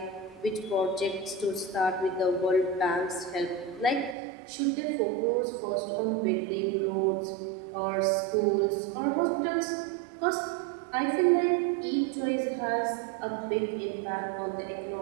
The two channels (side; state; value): left; drops out; at 4.2 s